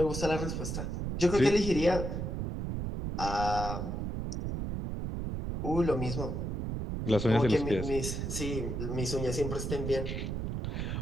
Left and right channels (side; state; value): right; noise; rumble, 3 dB below the sound